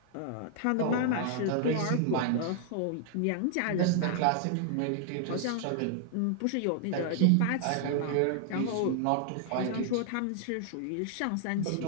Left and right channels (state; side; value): different; both; correlation 0.00